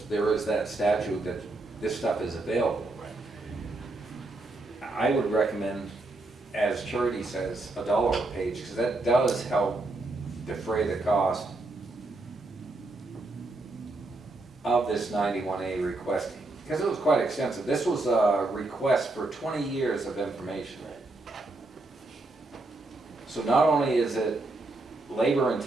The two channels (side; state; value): left; quieter; 3.0 dB